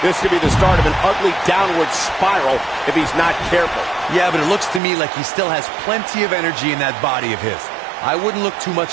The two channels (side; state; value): left; drops out; at 4.8 s